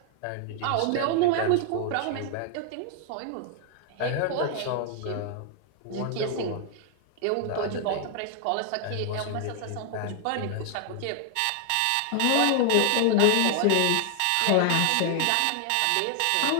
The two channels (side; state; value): both; different; correlation 0.00